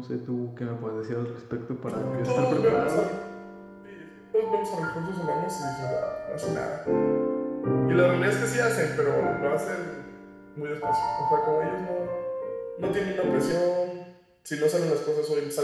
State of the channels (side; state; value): both; identical; correlation 1.00